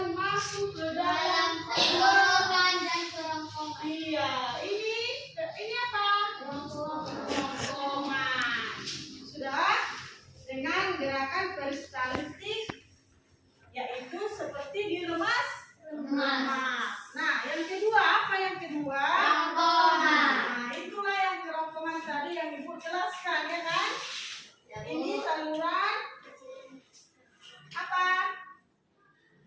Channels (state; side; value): identical; both; correlation 1.00